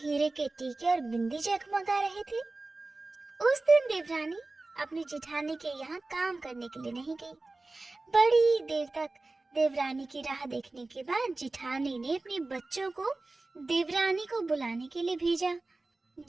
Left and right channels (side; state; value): left; quieter; 3.2 dB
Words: के टीके और बिंदी जगमगा रहे थे। उस दिन देवरानी अपनी जेठानी के यहाँ काम करने के लिए नहीं गई। बड़ी देर तक देवरानी की राह देखने के बाद जिठानी ने अपने बच्चों को देवरानी को बुलाने के लिए भेजा।